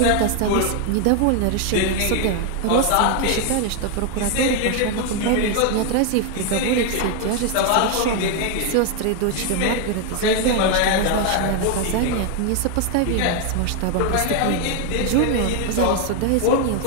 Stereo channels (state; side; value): different; both; correlation 0.01